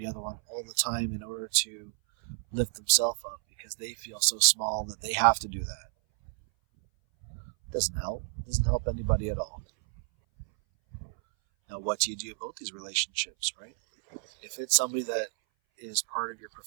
other one all the time in order to lift themselves up because they feel so small that they have to do that. It doesn't help. It doesn't help anybody at all. Now, what do you do about these relationships, right? If it's somebody that is part of your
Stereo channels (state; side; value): silent; left; 58 dB below the other